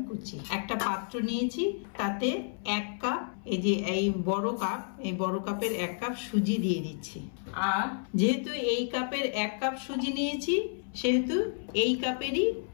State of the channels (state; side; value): silent; right; 57 dB below the other